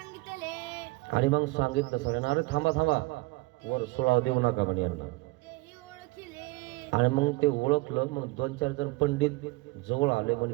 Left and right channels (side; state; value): left; quieter; 22.9 dB